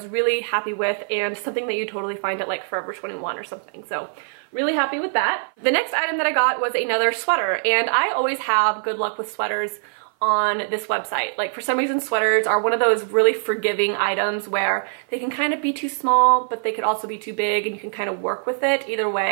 really happy with, and something that you totally find at like Forever 21 or something. So really happy with that. The next item that I got was another sweater, and I always have good luck with sweaters on this website. Like, for some reason, sweaters are one of those really forgiving items where they can kind of be too small, but they could also be too big, and you can kind of work with it either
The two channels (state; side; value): silent; left; 55 dB below the other